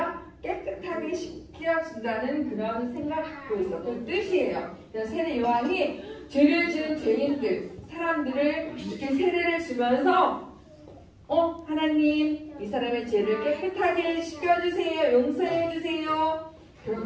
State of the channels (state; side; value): identical; both; correlation 1.00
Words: 깨끗하게 씻겨진다는 그런 생각을 갖고 있어. 그 뜻이에요. 세례 요한이 죄를 지은 죄인들, 사람들을 이렇게 세례를 주면서 하나님, 이 사람의 죄를 깨끗하게 씻겨주세요. 용서해주세요.